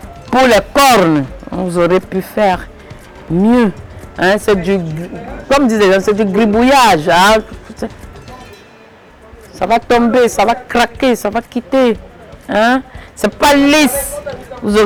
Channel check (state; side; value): identical; both; correlation 1.00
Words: pour les cornes. Vous aurez pu faire mieux. Hein? C'est du, comme disait, c'est du gribouillage. Hein? Ça va tomber, ça va craquer, ça va quitter. Hein? C'est pas lisse. Vous